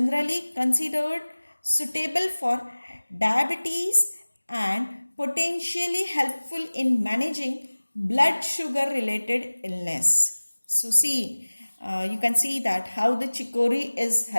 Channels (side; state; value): both; inverted; correlation -1.00